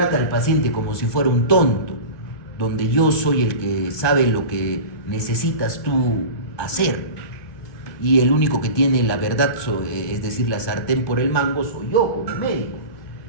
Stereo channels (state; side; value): late; right; 2.6 ms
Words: al paciente como si fuera un tonto, donde yo soy el que sabe lo que necesitas tú hacer y el único que tiene la verdad, es decir, la sartén por el mango, soy yo como médico.